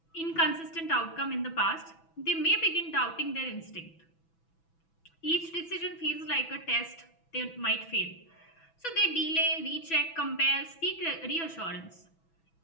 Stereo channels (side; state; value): right; late; 6.1 ms